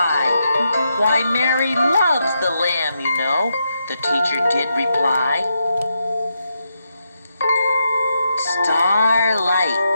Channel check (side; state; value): both; inverted; correlation -0.83